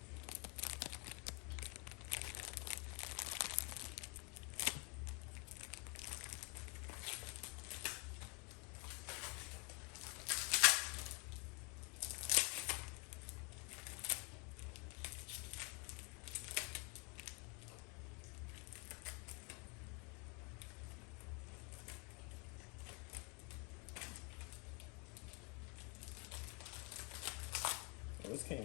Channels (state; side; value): quieter; right; 32.4 dB